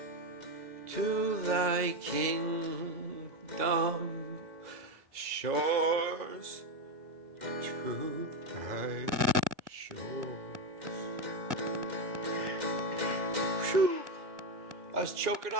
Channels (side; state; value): left; late; 2.1 ms